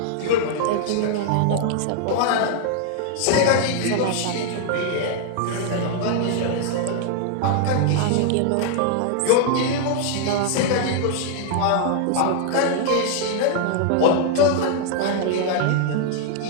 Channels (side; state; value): both; different; correlation 0.00